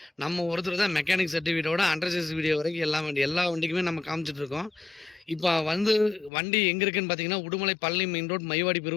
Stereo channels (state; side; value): drops out; right; at 6.3 s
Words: நம்ம ஒருத்தர் தான் மெக்கானிக் சர்டிஃபிகேட்டோட அண்டர் சேஸ் வீடியோ வரைக்கும் எல்லா வண்டிக்குமே நம்ம காமிச்சிட்டு இருக்கோம். இப்ப வந்து வண்டி எங்க இருக்குன்னு பார்த்தீங்கன்னா, உடுமலை பழனி மெயின் ரோட் மைவாடி